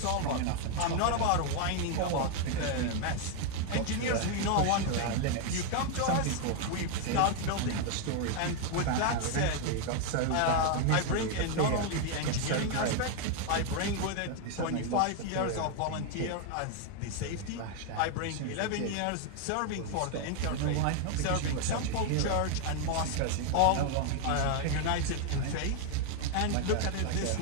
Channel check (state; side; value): different; both; correlation 0.01